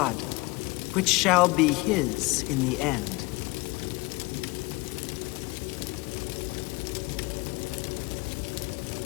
which shall be his in the end.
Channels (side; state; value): right; quieter; 23.9 dB